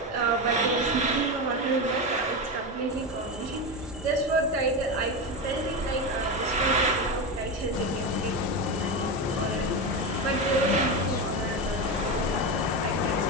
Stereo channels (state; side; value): normal; both; correlation 0.16